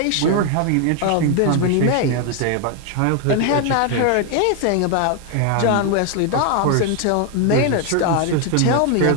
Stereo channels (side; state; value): both; different; correlation 0.01